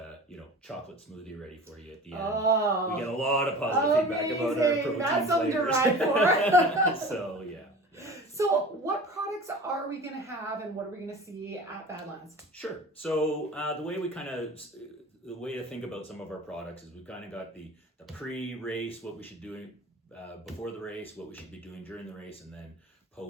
you know, chocolate smoothie ready for you at the end. Oh, we get a lot of positive feedback about our protein That's something flavors. to ride for. So, yeah. So what products are we going to have and what are we going to see at Badlands? Sure. So the way to think about some of our products is we've kind of got the pre-race, what we should do before the race, what we should be doing during the race, and then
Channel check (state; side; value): normal; both; correlation 0.38